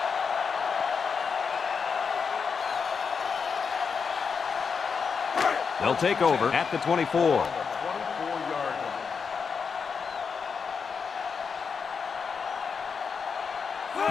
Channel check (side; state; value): right; quieter; 5.8 dB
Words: They'll take over at the 24.